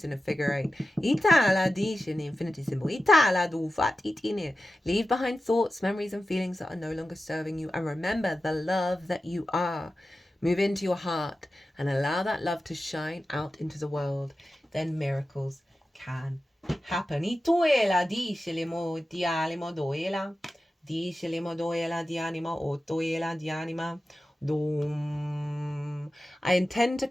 in a figure 8. In the infinity symbol. Leave behind thoughts, memories, and feelings that are no longer serving you. And remember the love that you are. Move into your heart and allow that love to shine out into the world. Then miracles can happen. Dice le modoela di anima, otoela di anima, dum. I intend to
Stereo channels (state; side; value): normal; both; correlation 0.93